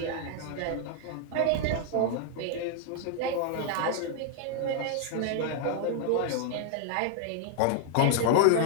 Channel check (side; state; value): both; different; correlation 0.00